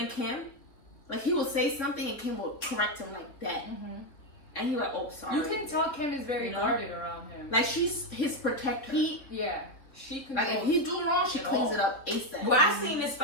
and Kim, like he will say something and Kim will correct him like that, and he like, oh sorry. You can tell Kim is very You know? guarded around him. Like she's his protector. She Like if controls he's doing wrong, she it cleans all. it up ASAP. Well, I seen this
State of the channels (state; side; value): late; right; 3.7 ms